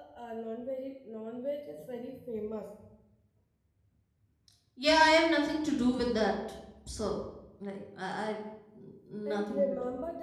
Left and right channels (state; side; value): identical; both; correlation 1.00